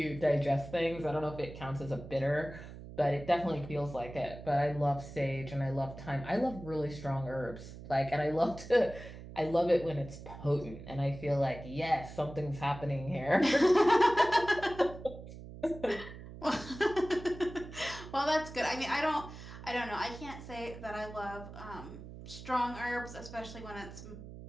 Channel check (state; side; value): noise; right; hum, 13 dB below the sound